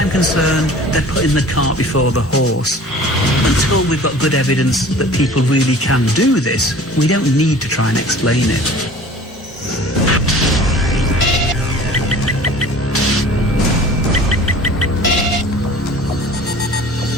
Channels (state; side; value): normal; both; correlation 0.45